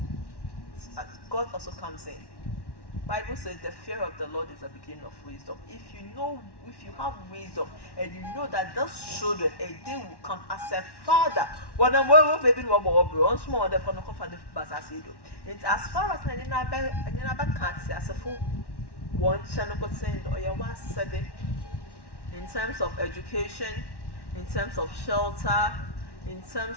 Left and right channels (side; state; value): right; late; 1.1 ms